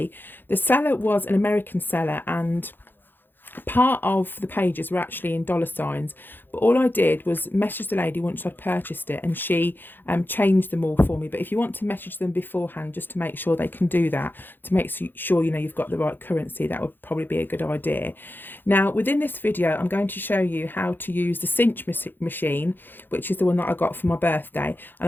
The seller was an American seller and part of the pages were actually in dollar signs, but all I did was message the lady once I'd purchased it, and she changed them all for me. But if you want to message them beforehand just to make sure they can do that, to make sure you know you've got the right currency, that would probably be a good idea. Now within this video I'm going to show you how to use the Cinch machine, which is the one that I got for my birthday, and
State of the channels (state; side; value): late; right; 0.095 ms